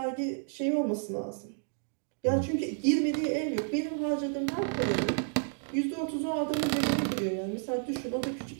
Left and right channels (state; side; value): silent; left; digital silence